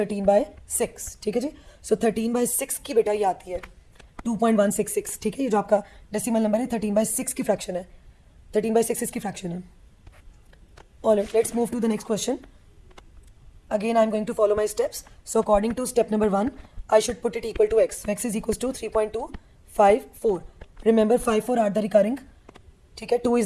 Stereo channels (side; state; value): both; identical; correlation 1.00